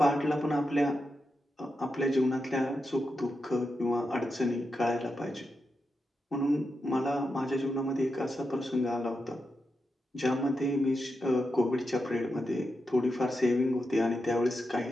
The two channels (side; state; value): both; normal; correlation 0.87